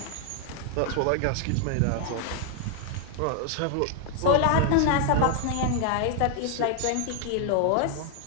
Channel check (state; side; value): different; both; correlation 0.00